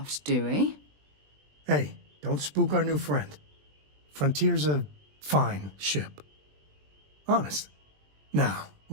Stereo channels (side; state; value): left; late; 20 ms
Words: do we? Hey, don't spook our new friend. Frontier's a fine ship. Honest. Now,